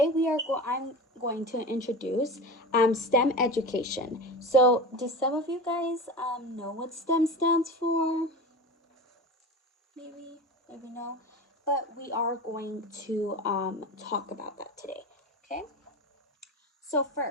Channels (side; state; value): both; normal; correlation 0.28